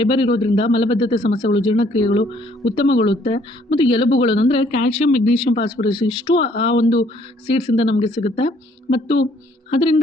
ಇರೋದ್ರಿಂದ ಮಲಬದ್ಧತೆ ಸಮಸ್ಯೆಗಳು, ಜೀರ್ಣಕ್ರಿಯೆಗಳು ಉತ್ತಮಗೊಳ್ಳುತ್ತೆ. ಮತ್ತು ಎಲುಬುಗಳನ್ನು ಅಂದರೆ ಕ್ಯಾಲ್ಶಿಯಂ, ಮೆಗ್ನೀಷಿಯಂ, ಫಾಸ್ಫರಸ್ ಇಷ್ಟು ಆ ಒಂದು ಸೀಡ್ಸಿಂದ ನಮಗೆ ಸಿಗುತ್ತೆ. ಮತ್ತು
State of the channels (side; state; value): both; normal; correlation 0.63